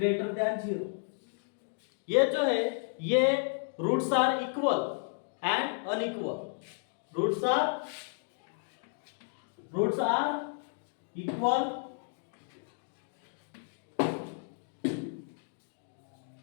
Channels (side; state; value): right; silent; digital silence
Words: देन 0, ये जो है ये roots are equal and unequal, roots are equal